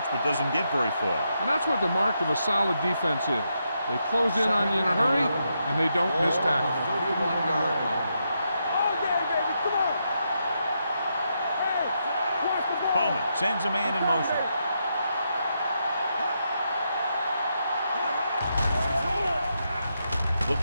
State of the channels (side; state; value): both; inverted; correlation -0.82